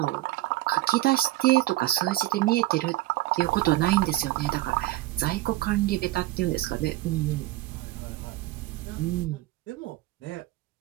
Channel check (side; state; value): left; quieter; 17.0 dB